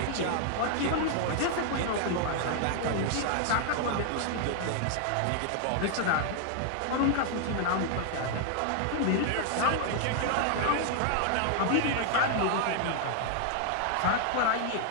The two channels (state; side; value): different; both; correlation 0.00